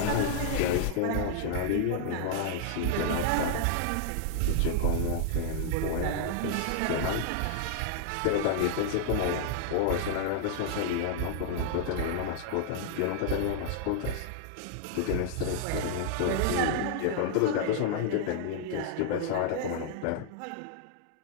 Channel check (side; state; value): both; different; correlation -0.01